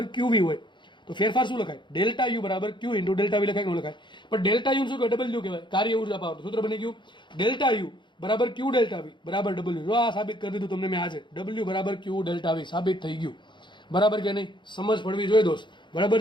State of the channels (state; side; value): late; right; 0.23 ms